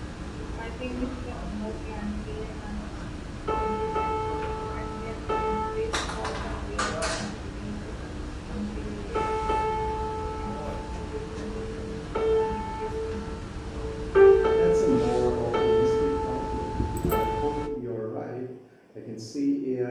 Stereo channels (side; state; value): both; identical; correlation 1.00